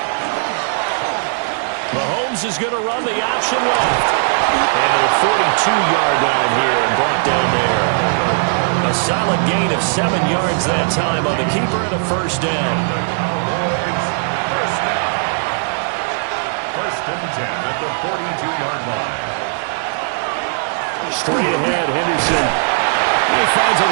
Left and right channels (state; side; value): silent; left; 64 dB below the other